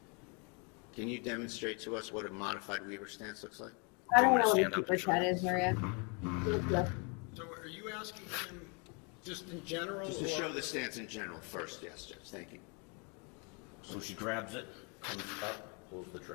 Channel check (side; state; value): right; quieter; 34.1 dB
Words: Can you demonstrate to us what a modified Weaver stance looks like? I don't wanna know what a stand up super and show chat you? is, Maria. So are you asking him just in general? Just to or- show the stance in general first, yes, Judge, thank you. So she grabs it, comes up, pulls the